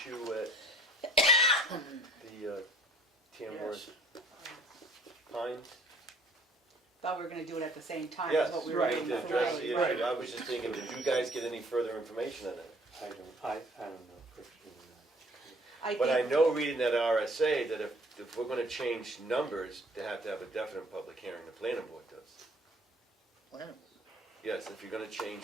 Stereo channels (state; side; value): normal; both; correlation 0.56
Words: at the Tamworth Pines? Thought we were gonna do it at the same time Yes, as what we we were right, doing need to before. address the issue. Right. I was just thinking, did you guys get any further information on it? I don't know, Christian. I But I think, know reading that RSA that if if we're gonna change numbers, they have to have a definite public hearing, the planning board does. Plan. Yes, if you're gonna change